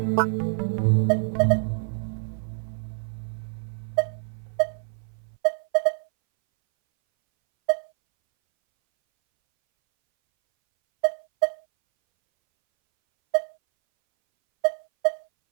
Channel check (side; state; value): left; silent; 61 dB below the other